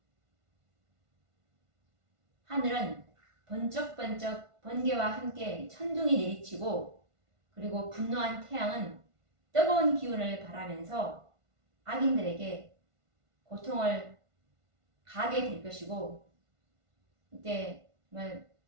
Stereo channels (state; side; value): late; left; 1.5 ms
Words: 하늘은 번쩍번쩍 번개와 함께 천둥이 내리치고 그리고 분노한 태양은 뜨거운 기운을 발하면서 악인들에게 고통을 가게 될 것이고 이때 정말